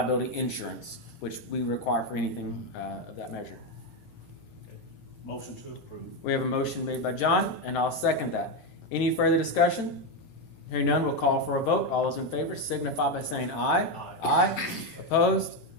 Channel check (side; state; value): right; late; 17 ms